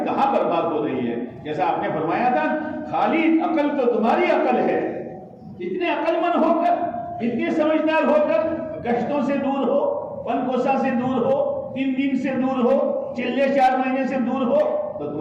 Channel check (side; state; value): both; identical; correlation 1.00